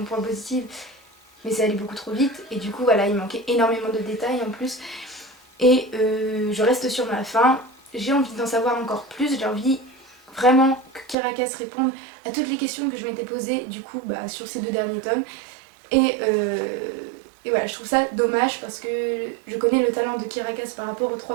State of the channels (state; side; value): drops out; left; at 11.2 s